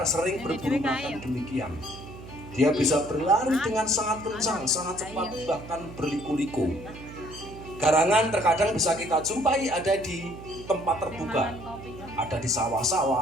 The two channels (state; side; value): noise; right; hum, 15 dB below the sound